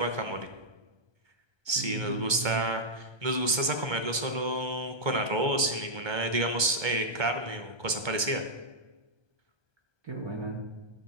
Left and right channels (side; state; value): left; late; 1.3 ms